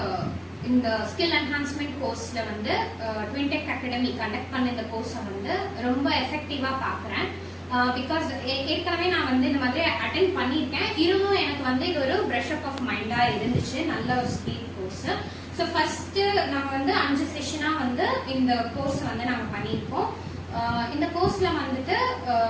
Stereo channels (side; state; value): both; identical; correlation 1.00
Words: இந்த skill enhancement கோர்ஸ்ல வந்து ட்வின்டெக் அகாடமி கண்டக்ட் பண்ண இந்த கோர்ஸை வந்து ரொம்ப எஃபெக்டிவா பாக்குறேன். பிகாஸ் ஏற்கனவே நான் வந்து இந்த மாதிரி அட்டென்ட் பண்ணியிருக்கேன். இருந்தும் எனக்கு வந்து இது ஒரு ப்ரஷ் அப் ஆஃப் மைண்டா இருந்துச்சு. நல்ல ஒரு ஸ்கில் கோர்ஸ். ஸோ ஃபர்ஸ்ட் நம்ம வந்து 5 செஷனா வந்து இந்த கோர்ஸ் வந்து நாங்க பண்ணியிருக்கோம். இந்த கோர்ஸ்ல வந்துட்டு